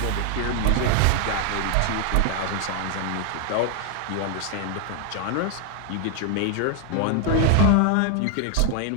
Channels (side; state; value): both; different; correlation 0.01